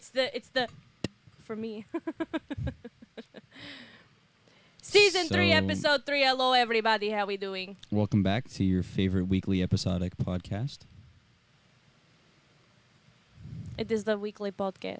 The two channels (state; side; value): identical; both; correlation 1.00